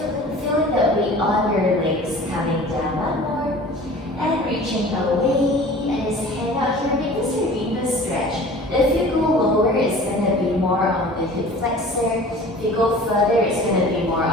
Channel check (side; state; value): both; normal; correlation 0.43